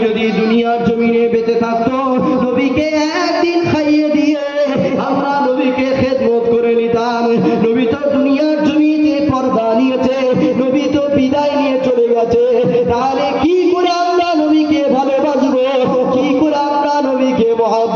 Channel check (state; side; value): identical; both; correlation 1.00